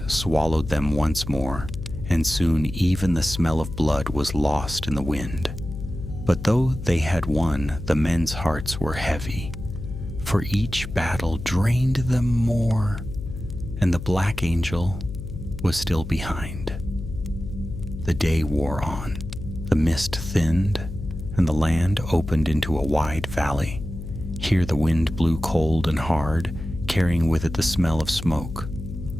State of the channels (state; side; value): noise; left; hum, 9 dB below the sound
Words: swallowed them once more, and soon even the smell of blood was lost in the wind. But though they had won, the men's hearts were heavy, for each battle drained them more, and the Black Angel was still behind. The day wore on. The mist thinned, and the land opened into a wide valley. Here the wind blew cold and hard, carrying with it the smell of smoke.